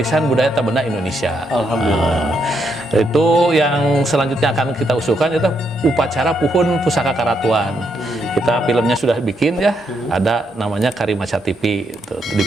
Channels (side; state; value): both; normal; correlation 0.78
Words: budaya tak benda Indonesia. Alhamdulillah. Itu yang selanjutnya akan kita usulkan itu upacara puhun Pusaka Karatuan. Kita filmnya sudah bikin ya, ada namanya Karimaca TV. Di